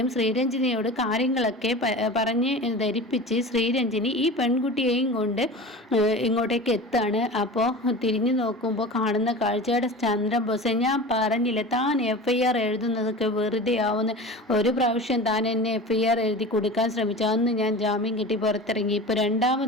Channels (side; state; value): both; normal; correlation 0.34